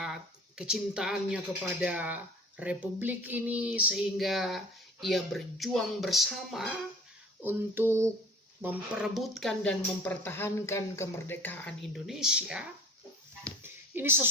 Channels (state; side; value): normal; both; correlation 0.44